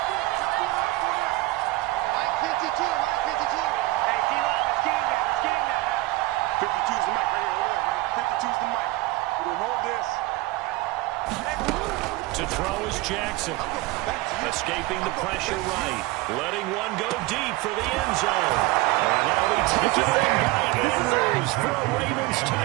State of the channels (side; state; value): left; quieter; 19.8 dB